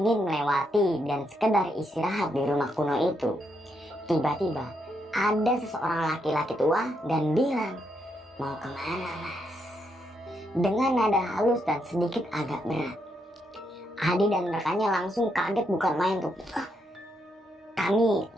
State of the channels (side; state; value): both; normal; correlation 0.78